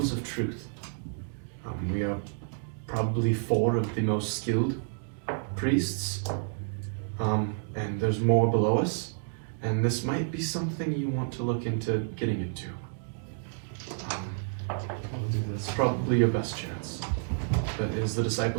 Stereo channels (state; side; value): silent; left; digital silence